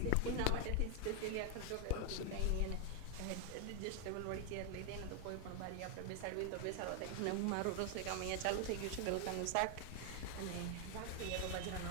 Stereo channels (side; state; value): both; different; correlation 0.00